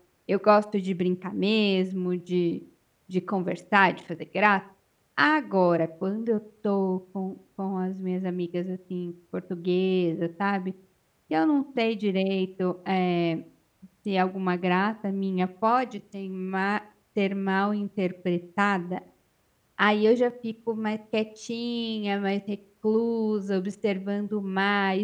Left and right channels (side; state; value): both; identical; correlation 1.00